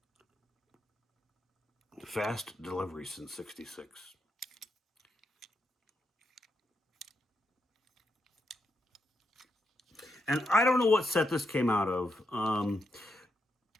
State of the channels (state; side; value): normal; both; correlation 0.83